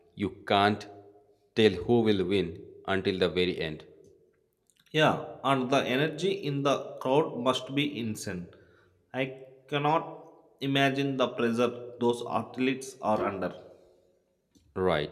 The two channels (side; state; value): both; identical; correlation 1.00